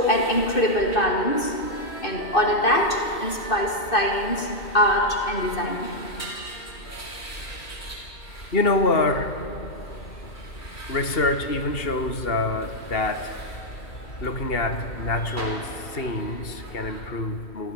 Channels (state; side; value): late; right; 2.6 ms